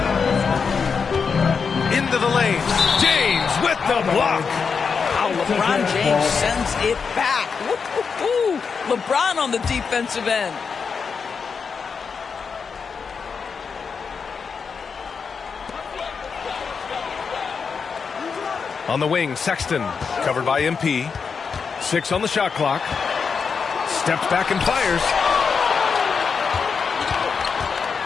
Into the lane. James with the block. Wow, LeBron James sends it back. Woo-hoo-hoo. LeBron on the defensive end. On the wing, Sexton, covered by MP. 6 on the shot clock. Steps back and fires.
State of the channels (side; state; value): right; quieter; 5.7 dB